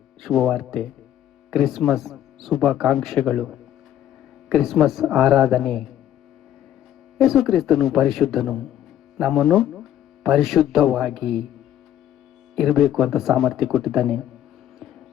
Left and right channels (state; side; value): quieter; right; 11.3 dB